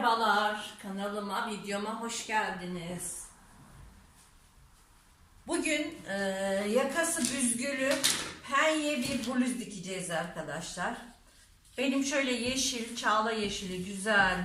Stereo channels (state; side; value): identical; both; correlation 1.00